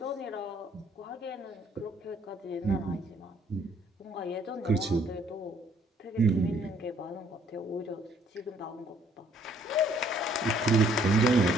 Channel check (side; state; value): both; normal; correlation 0.63